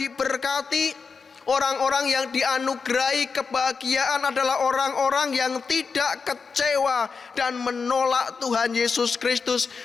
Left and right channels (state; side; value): quieter; right; 5.1 dB